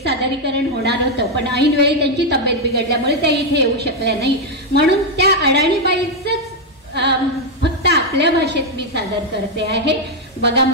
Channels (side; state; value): both; normal; correlation 0.02